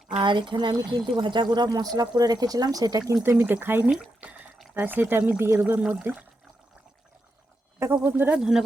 আর এখানে আমি কিন্তু ভাজা গুঁড়া মশলা করে রেখেছিলাম, সেটা কিন্তু আমি দেখাইনি, তাই সেটা আমি দিয়ে দেবো এর মধ্যে। দেখো বন্ধুরা,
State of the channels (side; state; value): both; normal; correlation 0.85